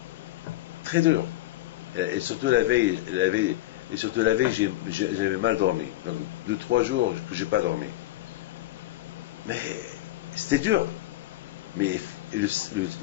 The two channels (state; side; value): quieter; right; 16.2 dB